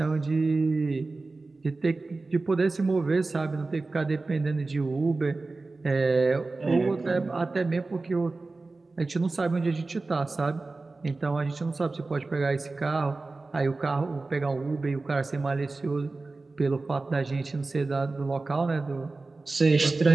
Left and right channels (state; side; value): quieter; left; 3.5 dB